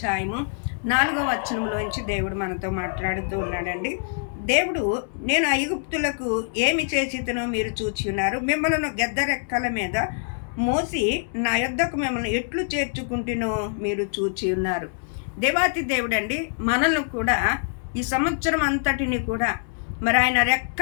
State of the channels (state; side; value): silent; right; digital silence